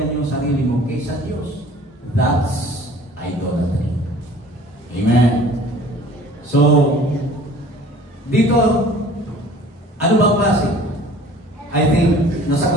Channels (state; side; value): normal; both; correlation 0.48